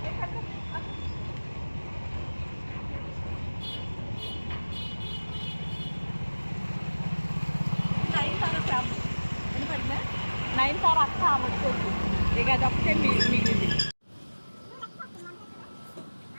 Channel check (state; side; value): inverted; both; correlation -1.00